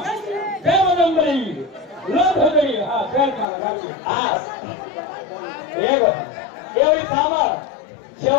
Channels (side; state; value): right; drops out; at 3.5 s